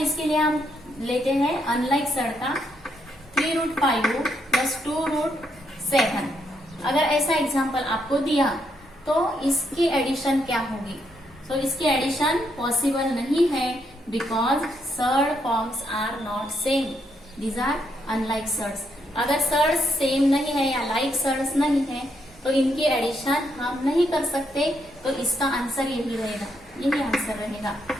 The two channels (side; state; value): both; normal; correlation 0.77